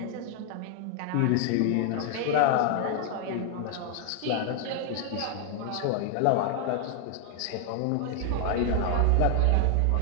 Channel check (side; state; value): both; different; correlation 0.00